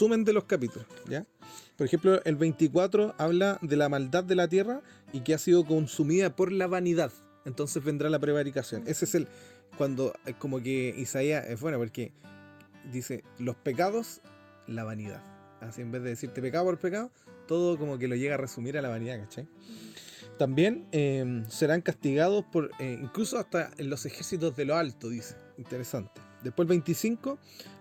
de los capítulos, ¿ya? Por ejemplo, el 24 habla de la maldad de la tierra y que ha sido consumida por la vanidad. Entonces vendrá la prevaricación. Ese es cuando como que Isaías es bueno porque dice los pecados, la vanidad. Así en vez de decirte pecado por pecado, todo como que lo llega a resumir a la vanidad, ¿cachai? También serán castigados por incluso hasta en los ejércitos de lo alto, dice. Interesante. Después el 25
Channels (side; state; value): both; identical; correlation 1.00